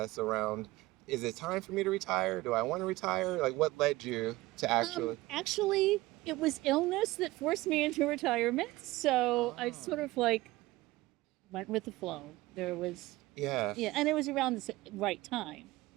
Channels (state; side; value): quieter; left; 19.2 dB